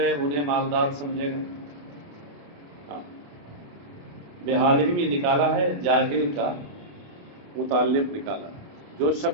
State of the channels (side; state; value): left; late; 28 ms